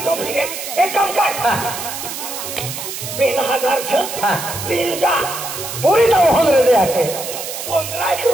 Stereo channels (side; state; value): right; noise; hiss, 7 dB below the sound